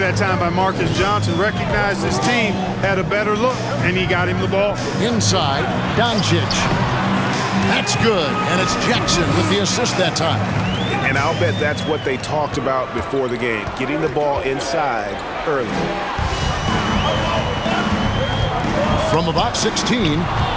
time by Marcus Johnson. Recognized his team had a better look, and he got him the ball. Inside, Doncici. That's good, and it's Jackson with the assist that time. And I'll bet that's what they talked about before the game, getting the ball inside early. From about 16,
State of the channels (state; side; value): identical; both; correlation 1.00